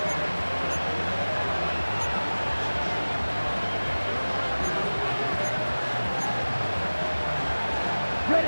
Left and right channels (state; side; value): inverted; both; correlation -1.00